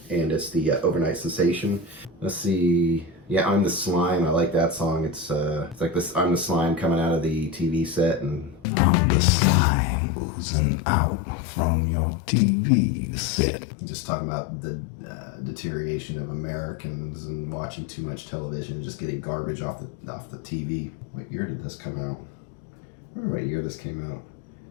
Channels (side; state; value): right; drops out; at 8.7 s